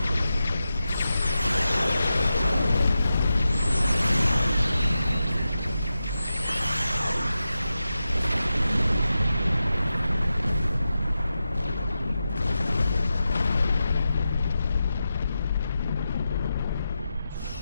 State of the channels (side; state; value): both; inverted; correlation -0.90